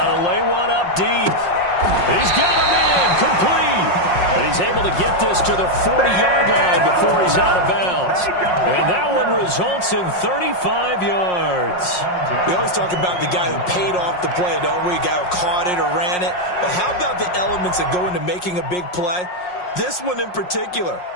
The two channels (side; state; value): right; late; 5.5 ms